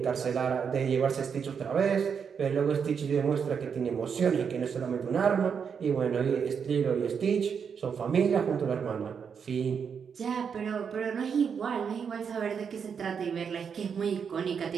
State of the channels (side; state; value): left; quieter; 6.7 dB